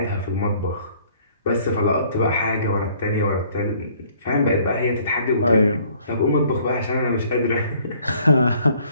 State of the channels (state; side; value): inverted; both; correlation -0.59